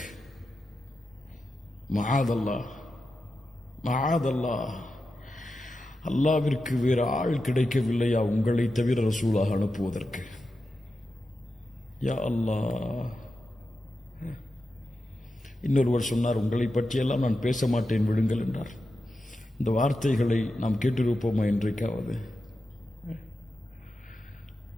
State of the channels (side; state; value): both; normal; correlation 0.90